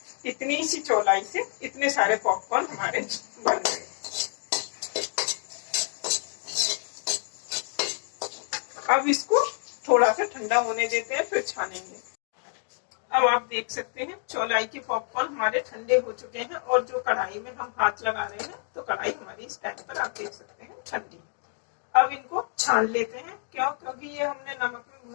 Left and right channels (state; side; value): silent; right; 59 dB below the other